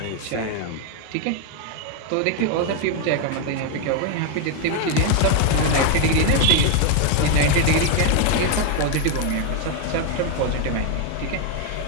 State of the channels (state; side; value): different; both; correlation 0.01